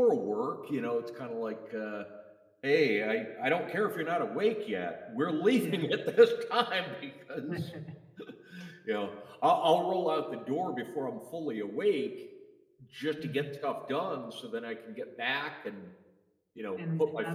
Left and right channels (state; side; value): identical; both; correlation 1.00